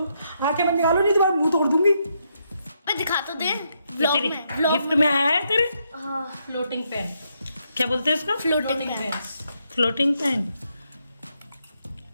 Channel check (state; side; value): inverted; both; correlation -0.78